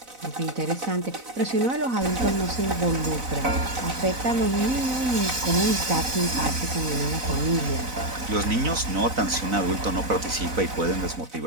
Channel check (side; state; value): left; late; 4.0 ms